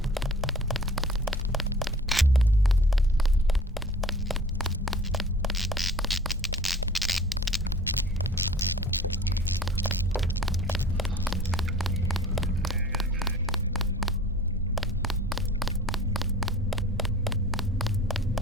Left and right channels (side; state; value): both; normal; correlation 0.46